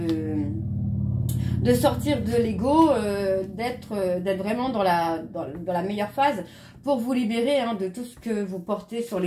sortir de l'ego, d'être vraiment dans la meilleure phase pour vous libérer hein, de tout ce que vous portez sur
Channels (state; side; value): identical; both; correlation 1.00